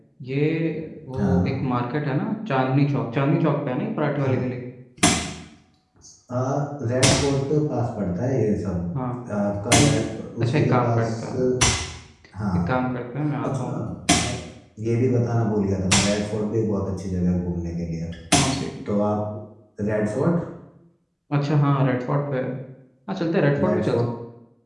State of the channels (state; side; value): identical; both; correlation 1.00